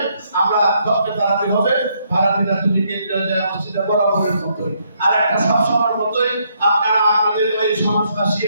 আমরা ডক্টর তারাবি হবে, ভারতীয়রা যদি কেন্দ্রীয় জামে মসজিদে বরাবরের মতোই। আর একটা সবসময়ের মতোই আপনারা আপনাদের ওই সমাজবাসী,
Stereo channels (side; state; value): both; inverted; correlation -0.73